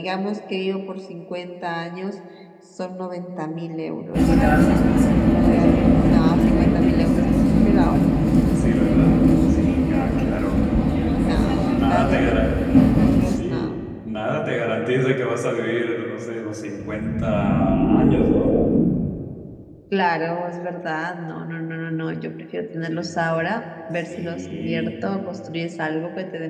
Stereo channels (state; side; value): identical; both; correlation 1.00